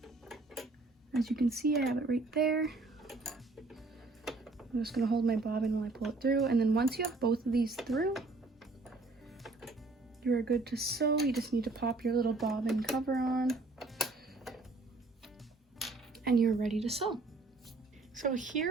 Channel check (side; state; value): left; quieter; 3.3 dB